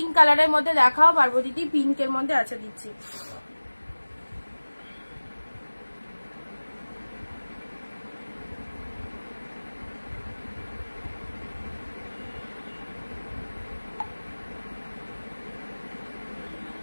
কালারের মধ্যে দেখাও, পার্বতী পিঙ্কের মধ্যে আছে, দিচ্ছি।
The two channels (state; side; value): inverted; both; correlation -1.00